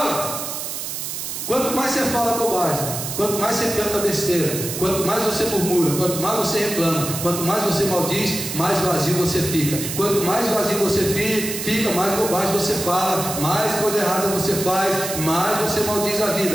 quanto mais você fala bobagem, quanto mais você canta besteira, quanto mais você murmura, quanto mais você reclama, quanto mais você maldiz, mais vazio você fica. Quanto mais vazio você fica, mais bobagem você fala, mais coisa errada você faz, mais você maldiz a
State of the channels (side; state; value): right; noise; hiss, 6 dB below the sound